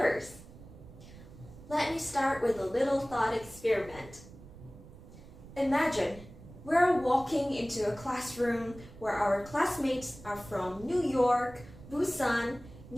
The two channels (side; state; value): right; noise; rumble, 18 dB below the sound